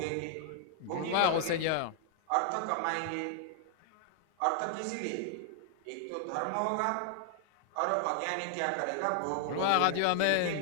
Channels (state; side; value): different; both; correlation 0.00